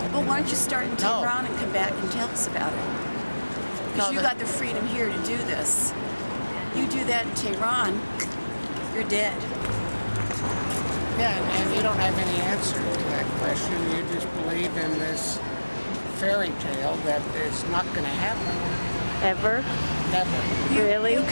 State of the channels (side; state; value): both; inverted; correlation -1.00